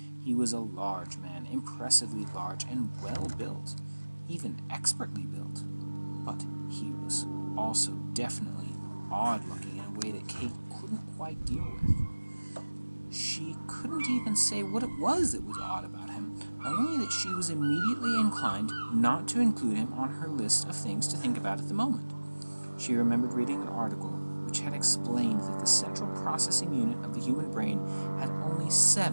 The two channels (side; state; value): both; inverted; correlation -1.00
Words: He was a large man, impressively large and well-built, even expertly built. But he was also definitely odd-looking in a way that Kate couldn't quite deal with. She couldn't even say what it was that was odd about him, only that she was immediately inclined not to include him on her list of things to think about at the moment. She remembered reading an article which had explained that the central processing unit of the human brain had only